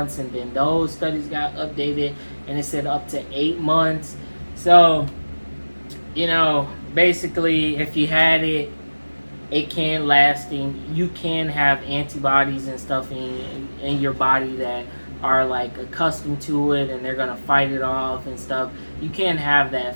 and then those studies got updated, and it said up to 8 months. So, you know, basically, if you had it, it can last, and you can have antibodies and stuff in your body that are like accustomed to it, and they're gonna fight it off and stuff. You can have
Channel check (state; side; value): inverted; both; correlation -1.00